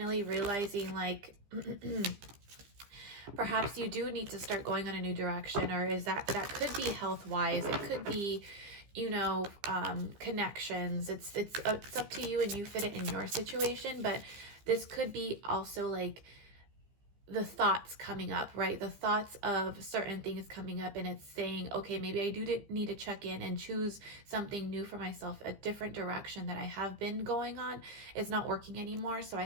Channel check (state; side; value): late; left; 15 ms